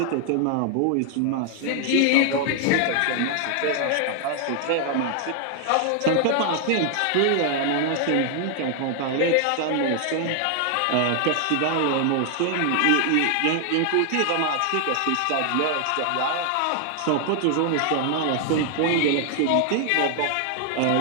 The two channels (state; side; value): different; both; correlation 0.00